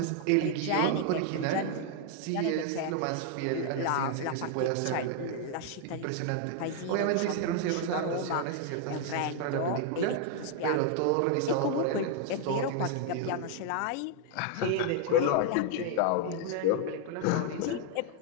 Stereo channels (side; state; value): both; different; correlation 0.00